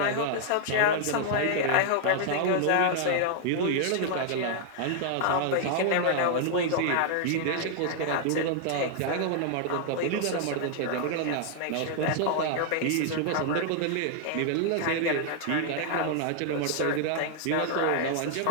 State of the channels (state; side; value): different; both; correlation -0.01